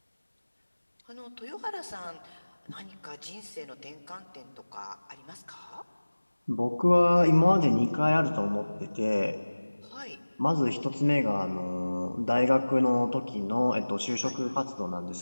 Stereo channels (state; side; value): inverted; both; correlation -1.00